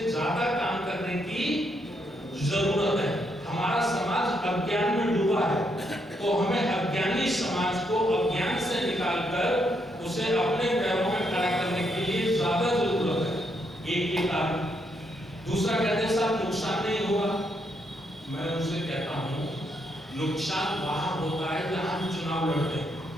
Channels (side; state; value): both; normal; correlation 0.76